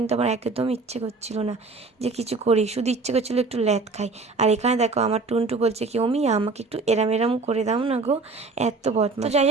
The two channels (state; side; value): quieter; left; 3.9 dB